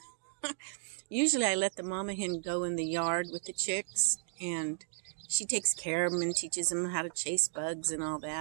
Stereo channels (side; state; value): left; silent; digital silence